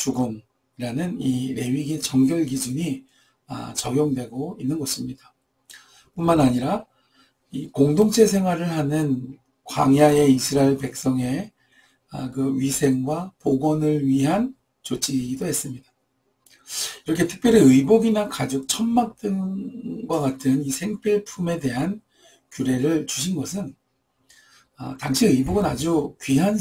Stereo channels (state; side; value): identical; both; correlation 1.00